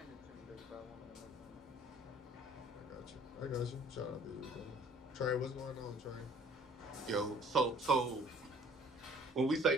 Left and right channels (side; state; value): both; normal; correlation 0.55